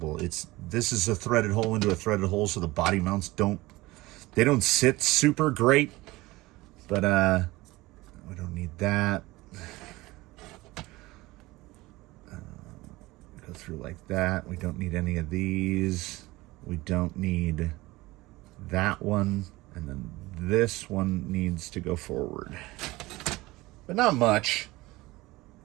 This is a threaded hole into a threaded hole, so the body mounts don't sit super great. But we don't need that. Go through like that. We don't need any of these. We don't need that one. And then this one needs to go forward. But not much.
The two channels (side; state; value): left; quieter; 20.1 dB